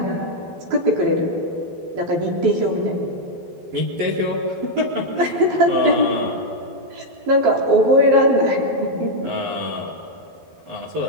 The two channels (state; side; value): late; left; 12 ms